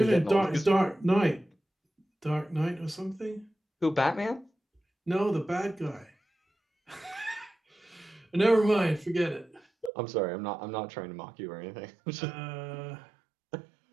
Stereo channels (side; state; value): left; drops out; at 9.9 s